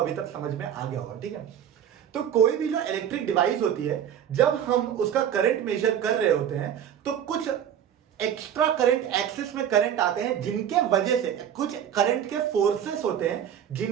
तक समझ में आ गया होगा, ठीक है। तो कोई भी जो इलेक्ट्रिक डिवाइस होती है, जब हम उसका करंट मेजर कर रहे होते हैं, तो कुछ एक्स्ट्रा करंट एक्सिस में करंट आते हैं, जिनके वजह से कुछ करंट के फोर्सेस होते हैं,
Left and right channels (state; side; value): quieter; left; 9.4 dB